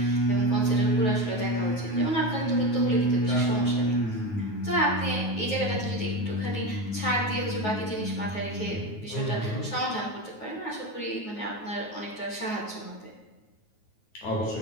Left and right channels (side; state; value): right; late; 9.4 ms